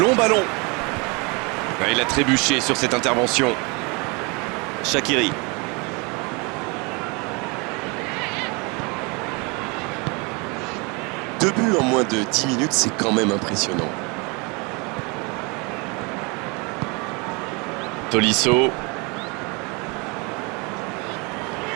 ballon. Ah, il a trébuché sur cette intervention. Shaqiri. Deux buts en moins de 10 minutes, c'est quand même impressionnant. Tolisso.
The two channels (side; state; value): left; quieter; 29.7 dB